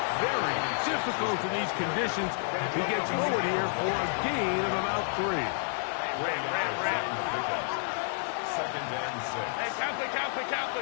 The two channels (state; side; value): silent; right; digital silence